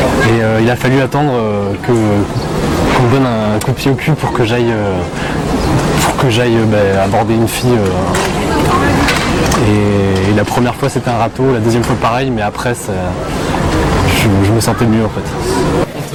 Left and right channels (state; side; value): identical; both; correlation 1.00